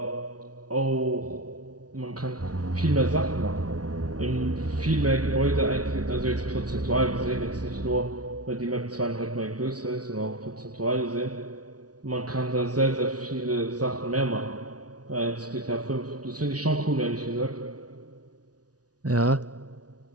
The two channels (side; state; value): left; late; 0.68 ms